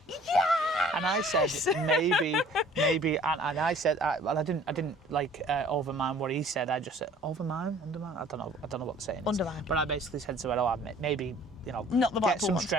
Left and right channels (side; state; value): both; normal; correlation 0.52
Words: yes! And I said, maybe, and I said, well, I didn't like overmine what he said. I just said, undermine? I don't know what the saying is. Undermine. But I basically said to her, maybe, not the get some ones.